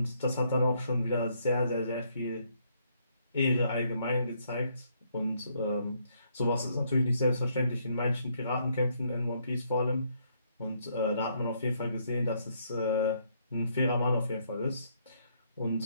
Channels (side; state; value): both; inverted; correlation -0.71